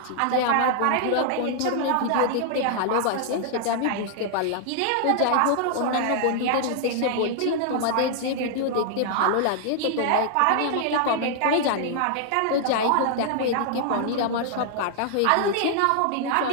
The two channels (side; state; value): both; different; correlation -0.01